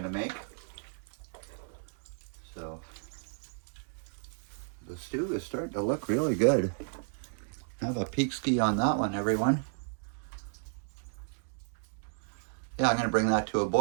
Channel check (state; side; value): silent; left; digital silence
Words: to make. So the stew is starting to look really good. Have a peek ski on that one, everyone. Yeah, I'm going to bring that to a